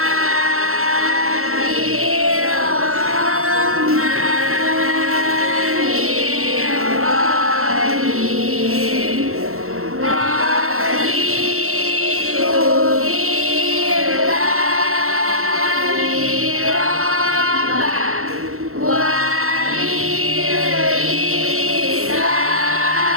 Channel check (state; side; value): late; left; 0.63 ms